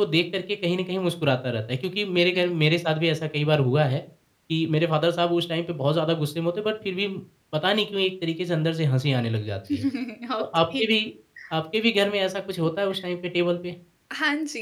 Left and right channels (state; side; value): identical; both; correlation 1.00